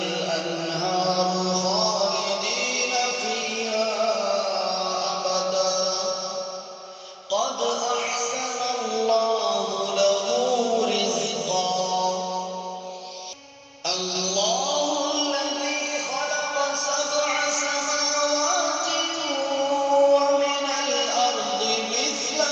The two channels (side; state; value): both; identical; correlation 1.00